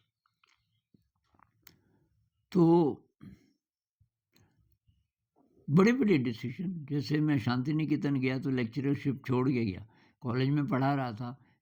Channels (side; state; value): both; identical; correlation 1.00